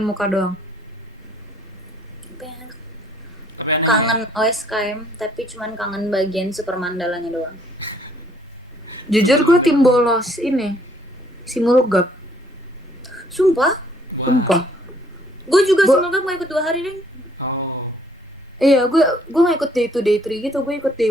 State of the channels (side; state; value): both; normal; correlation 0.63